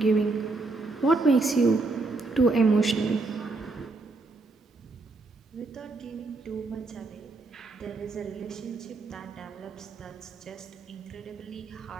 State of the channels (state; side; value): quieter; left; 3.6 dB